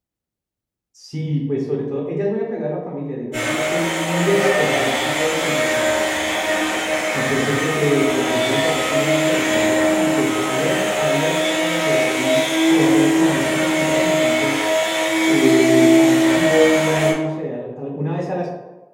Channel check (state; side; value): identical; both; correlation 1.00